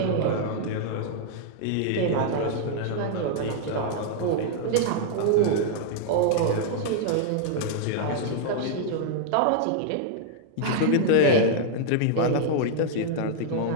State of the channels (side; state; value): both; different; correlation -0.01